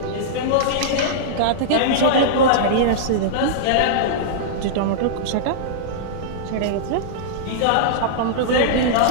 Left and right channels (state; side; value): different; both; correlation -0.02